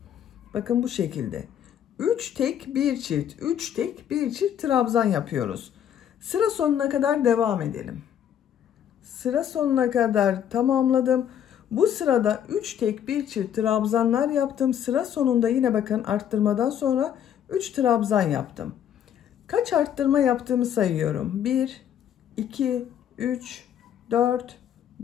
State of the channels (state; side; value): quieter; right; 9.6 dB